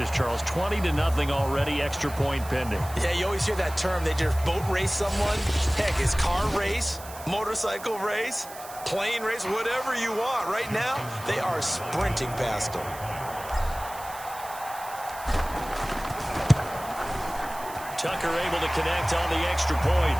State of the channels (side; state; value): right; noise; hiss, 15 dB below the sound